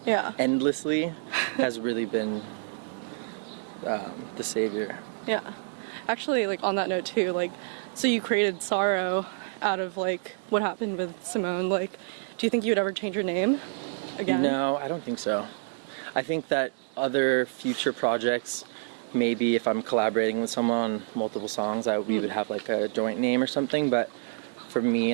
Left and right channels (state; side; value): silent; left; digital silence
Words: endlessly has really been the savior. Yeah. Actually, like on that note too, like so you created SARO out of like what happened with Simone. Like, do you think you would ever change your name again? No, I don't think so. I think that other future projects, maybe if I'm collaborating with someone on multiple songs, we would have like a joint name or something, but for me